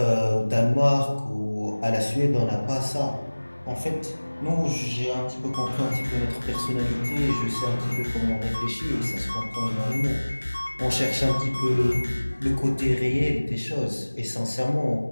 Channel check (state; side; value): inverted; both; correlation -1.00